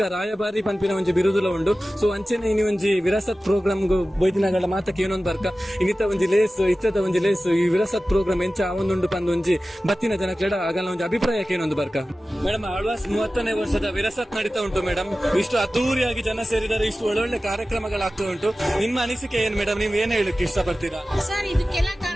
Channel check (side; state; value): both; normal; correlation 0.95